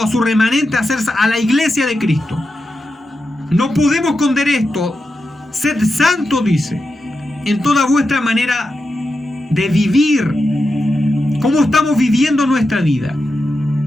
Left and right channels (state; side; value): normal; both; correlation 0.89